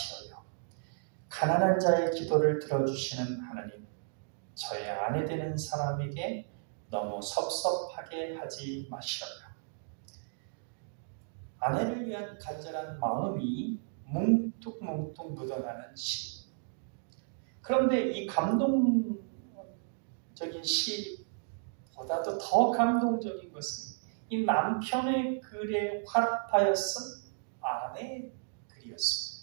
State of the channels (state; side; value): silent; left; digital silence